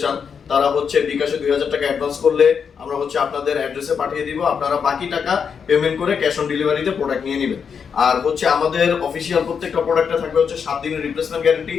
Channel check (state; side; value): quieter; right; 6.6 dB